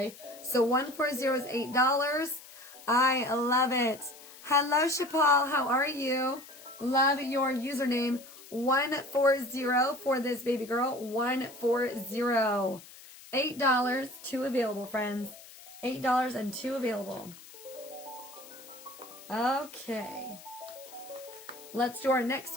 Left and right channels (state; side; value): noise; left; hiss, 19 dB below the sound